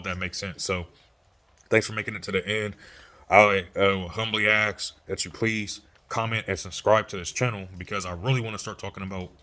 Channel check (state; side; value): identical; both; correlation 1.00